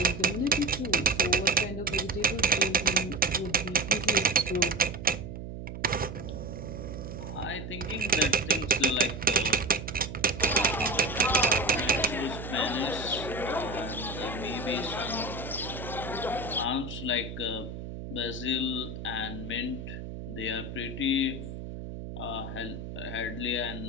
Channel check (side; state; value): right; noise; hum, 9 dB below the sound